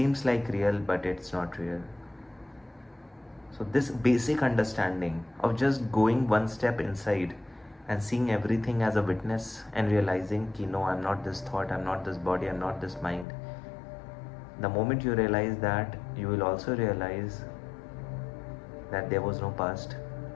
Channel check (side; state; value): right; drops out; at 13.2 s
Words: like real, but it's not real. So this basic understanding of just going one step inside and seeing everything as a witness and realizing ki no, I'm not this thought, I'm not this body, I'm not this mind. The moment you realize that, you will also realize that there was no past